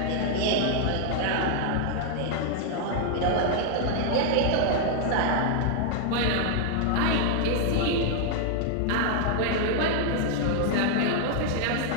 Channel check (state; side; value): different; both; correlation 0.00